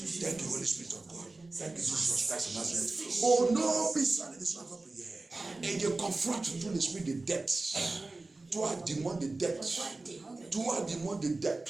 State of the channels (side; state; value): left; quieter; 3.3 dB